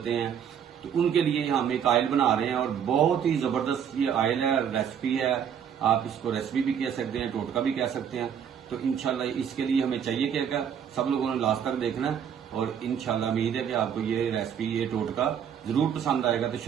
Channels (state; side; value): quieter; left; 8.3 dB